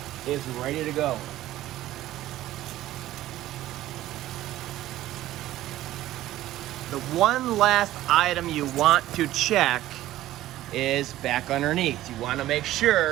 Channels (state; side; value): quieter; left; 14.7 dB